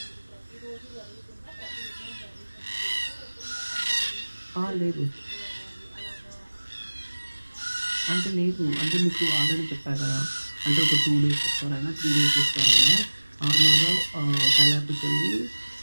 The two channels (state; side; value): inverted; both; correlation -1.00